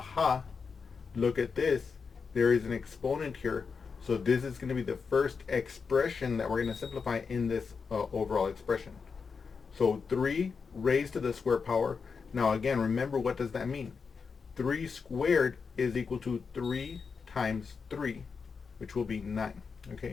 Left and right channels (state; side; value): quieter; right; 5.4 dB